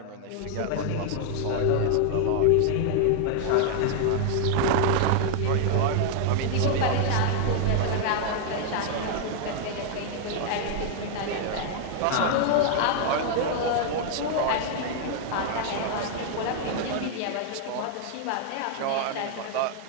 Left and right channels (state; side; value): different; both; correlation 0.00